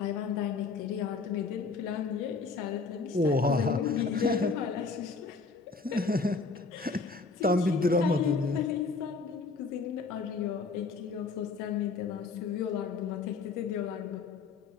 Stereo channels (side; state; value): right; quieter; 4.2 dB